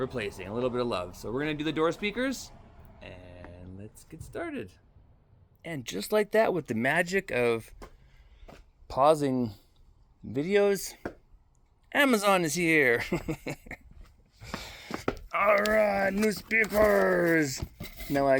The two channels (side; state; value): both; identical; correlation 1.00